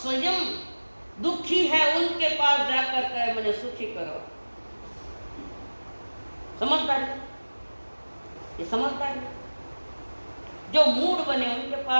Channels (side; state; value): both; inverted; correlation -1.00